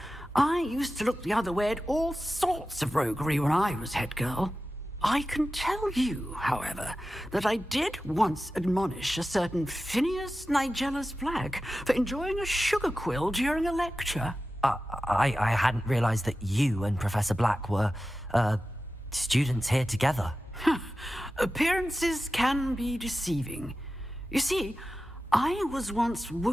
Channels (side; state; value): both; normal; correlation 0.94